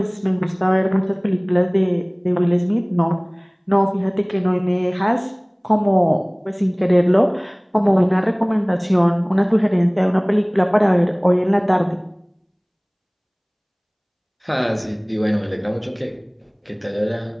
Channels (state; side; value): identical; both; correlation 1.00